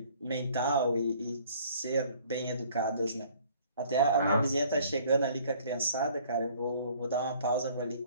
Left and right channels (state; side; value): inverted; both; correlation -0.56